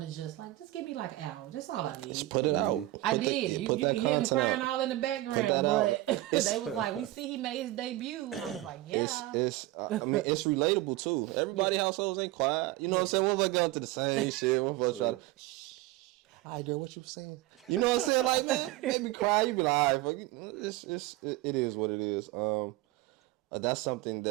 to just give me, like, an hour. That's all I need. Just put it out. I did. You can hear me crying all in the background. But they was like, we see he made his debut. I was like, yeah. It's relatable, too. Everybody's households ain't quiet. You know what I'm saying? One of us go to the same shit. One of us try to... I girl, what you saying? You know what I'm saying? Like, man, make me cry. You be like, all right, fuck it. It is what it is. That's something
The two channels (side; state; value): left; quieter; 17.6 dB